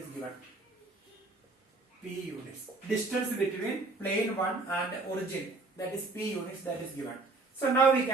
given. P units. Distance between plane 1 and origin, that is p units, that is given. So now we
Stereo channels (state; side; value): quieter; left; 3.4 dB